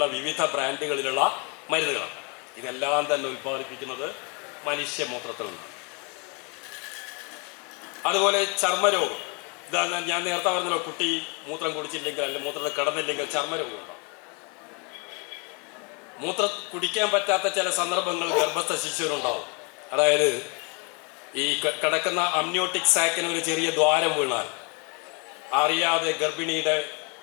വിവിധ ബ്രാൻഡുകളിലുള്ള മരുന്നുകളാണ്. ഇതെല്ലാം തന്നെ ഉൽപ്പാദിപ്പിക്കുന്നത് മനുഷ്യമൂത്രത്തിൽ നിന്നാണ്. അതുപോലെ ചർമ്മരോഗം, ഇതാ ഞാൻ നേരത്തെ പറഞ്ഞല്ലോ, കുട്ടി മൂത്രം കുടിച്ചില്ലെങ്കിൽ അല്ലെങ്കിൽ മൂത്രത്തിൽ കിടന്നില്ലെങ്കിൽ ചർമ്മരോഗം ഉണ്ടാവും. മൂത്രം കുടിക്കാൻ പറ്റാത്ത ചില സന്ദർഭങ്ങൾ ഗർഭസ്ഥ ശിശുവിനുണ്ടാവും. അതായത് ഈ കിടക്കുന്ന അമ്നിയോട്ടിക് സാക്കിന് ഒരു ചെറിയ ദ്വാരം വീണാൽ അറിയാതെ ഗർഭിണിയുടെ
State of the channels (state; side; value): quieter; right; 33.3 dB